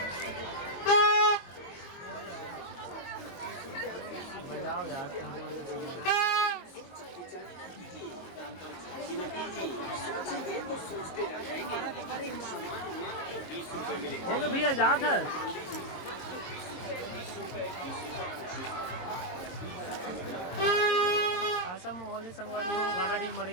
बजाओ यार हो गए भैया जात है। ऐसा माहौल है संगवारी हो गाड़ाडी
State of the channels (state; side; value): late; right; 22 ms